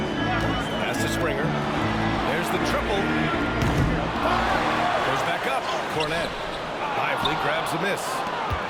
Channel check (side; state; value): both; identical; correlation 1.00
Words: Pass to Springer. There's the triple. Goes back up. Cornet. Lively grabs a miss.